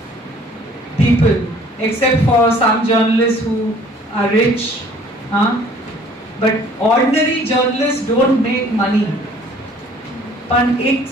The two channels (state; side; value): normal; both; correlation 0.54